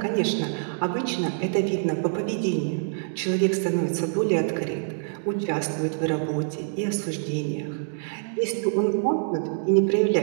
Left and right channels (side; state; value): left; silent; digital silence